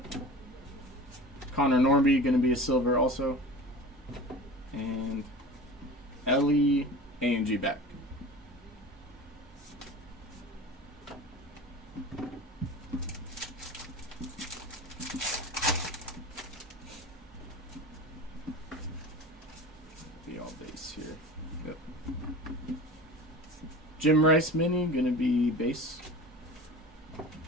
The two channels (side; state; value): both; normal; correlation 0.36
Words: Connor Norby going to be a silver also. And Ellie A&G back. Be all base here. Yep. Jim Rice mini going to be base.